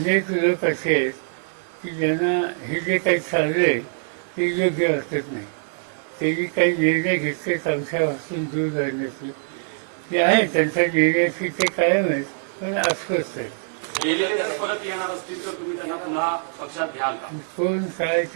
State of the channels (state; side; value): silent; left; digital silence